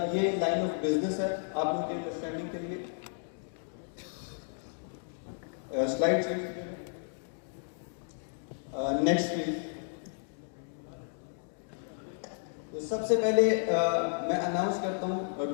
ये लाइन ऑफ बिजनेस है आप लोगों की अंडरस्टैंडिंग के लिए। Slide next please. तो सबसे पहले मैं अनाउंस करता हूँ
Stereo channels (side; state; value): right; silent; digital silence